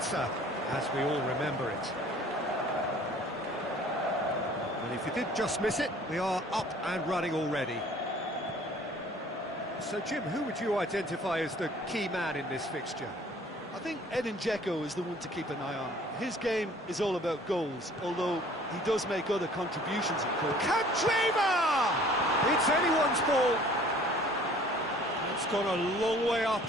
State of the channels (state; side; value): normal; both; correlation 0.52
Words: as we all remember it. And if you did just miss it, we are up and running already. So, Jim, who would you identify as the key man in this fixture? I think Edin Dzeko is the one to keep an eye on. His game is all about goals, although he does make other contributions, of course. Kandreva! It's anyone's ball. It's gone a long way up